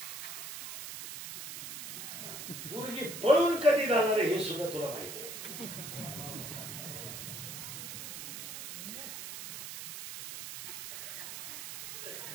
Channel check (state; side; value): noise; right; hiss, 8 dB below the sound